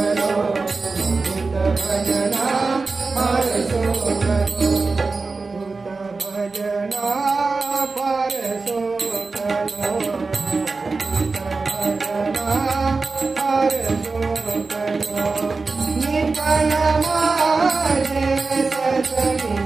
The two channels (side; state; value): left; quieter; 4.0 dB